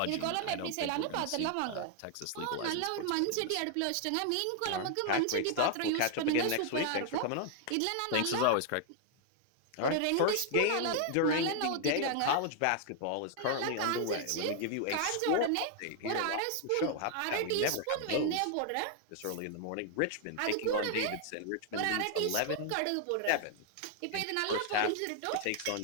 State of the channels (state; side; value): different; both; correlation 0.00